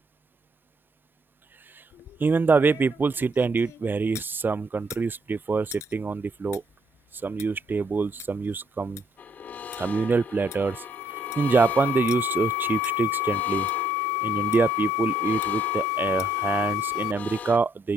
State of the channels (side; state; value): both; normal; correlation 0.69